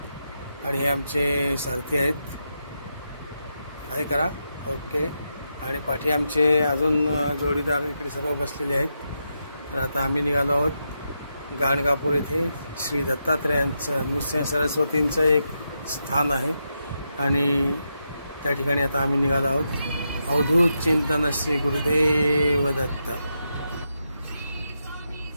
आणि हे आमचे सारथी आहेत। हाय करा, ओके। आणि पाठी आमचे अजून जोडीदार इकडे सर्व बसलेले आहेत। तर आता आम्ही निघालो आहोत गाणगापूर येथे श्री दत्तात्रेयांचं नृसिंह सरस्वतींचं एक स्थान आहे आणि त्या ठिकाणी आता आम्ही निघालो आहोत। अवधूत चिंतन श्री गुरुदेव दत्त।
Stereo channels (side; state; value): both; inverted; correlation -0.85